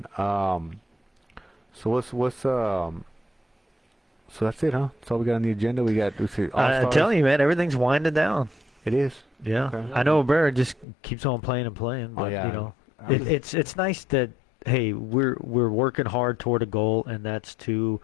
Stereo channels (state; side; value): drops out; right; at 10.9 s